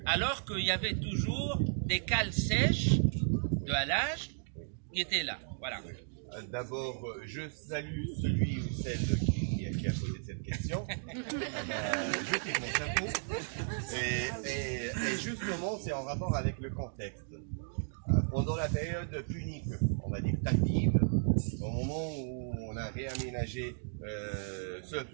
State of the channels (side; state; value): left; silent; digital silence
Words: Alors qu'il y avait toujours des cales sèches de halage qui étaient là. Voilà. D'abord, je salue celui ou celle qui a posé cette question. Je tire mon chapeau. Et justement, c'est en rapport avec le contexte. Pendant la période punique, on va dire tardive, au moment où on a réaménagé ce